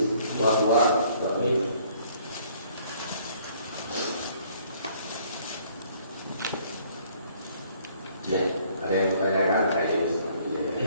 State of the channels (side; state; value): both; inverted; correlation -0.61